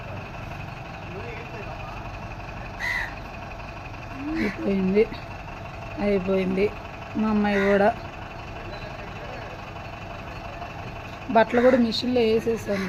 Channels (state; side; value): identical; both; correlation 1.00